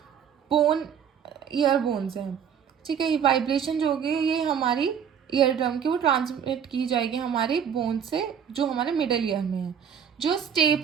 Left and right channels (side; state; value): left; quieter; 8.0 dB